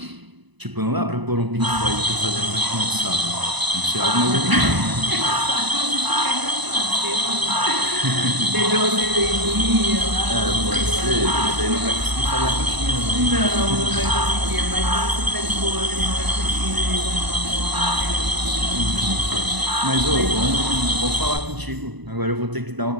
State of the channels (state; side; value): late; left; 1.0 ms